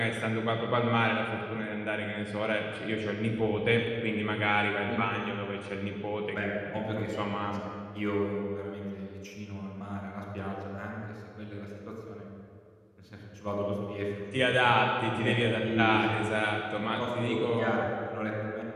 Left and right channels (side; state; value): both; identical; correlation 1.00